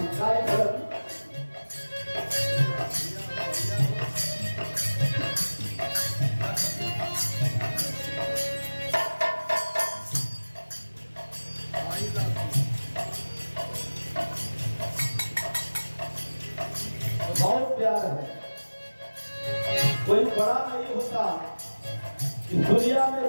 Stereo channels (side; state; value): both; inverted; correlation -1.00